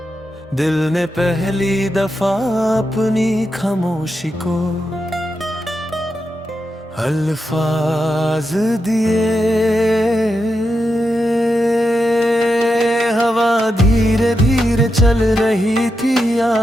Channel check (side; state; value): both; normal; correlation 0.86